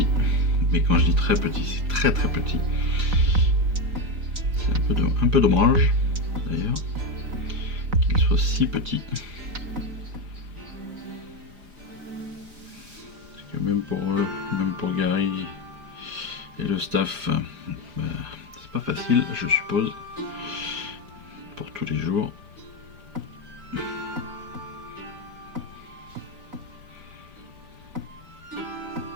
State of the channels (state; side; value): late; left; 4.0 ms